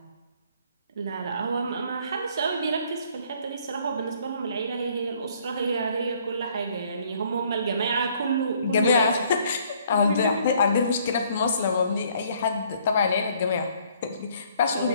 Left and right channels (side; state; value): both; inverted; correlation -0.62